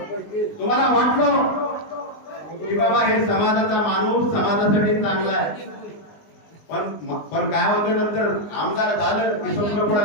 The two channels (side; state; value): right; late; 19 ms